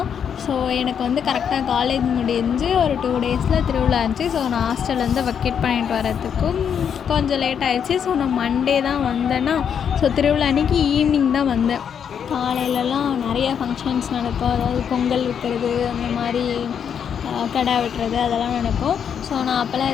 ஸோ எனக்கு வந்து கரெக்டாக காலேஜ் முடிஞ்சு ஒரு 2 டேஸில் திருவிழா இருந்துச்சு. ஸோ நான் ஹாஸ்டல்லேருந்து வெக்கேட் பண்ணிட்டு வரதுக்கும் கொஞ்சம் லேட் ஆகிடுச்சு. ஸோ நான் மண்டே தான் வந்தேன்னா, ஸோ திருவிழா அன்றைக்கி ஈவினிங் தான் வந்தேன். காலையிலலாம் நிறைய ஃபங்க்ஷன்ஸ் நடக்கும். அதாவது பொங்கல் வைக்கிறது, அந்த மாதிரி கடை வெட்டுறது, அதெல்லாம் நடக்கும். ஸோ நான் அப்போல்லாம்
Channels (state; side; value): quieter; right; 7.8 dB